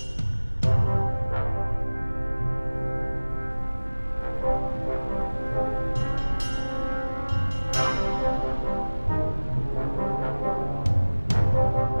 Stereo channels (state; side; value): inverted; both; correlation -1.00